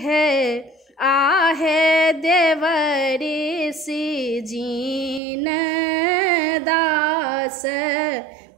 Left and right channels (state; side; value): drops out; left; at 5.2 s